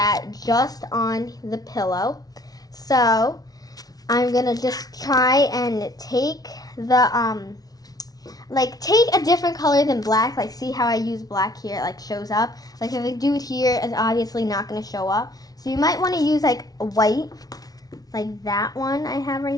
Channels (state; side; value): late; right; 0.18 ms